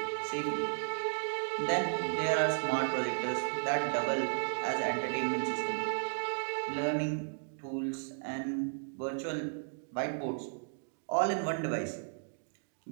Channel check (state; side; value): silent; left; digital silence